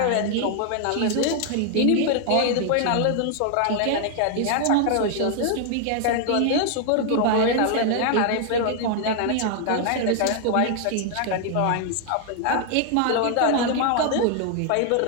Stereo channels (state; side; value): different; both; correlation 0.00